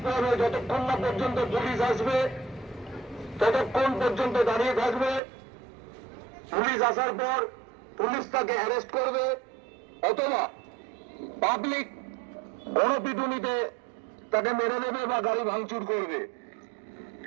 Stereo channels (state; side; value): drops out; left; at 5.2 s